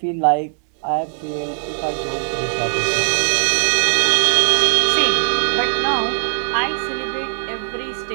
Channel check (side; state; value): left; silent; digital silence